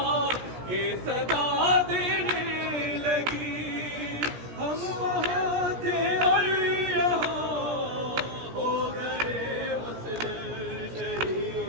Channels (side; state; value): left; late; 17 ms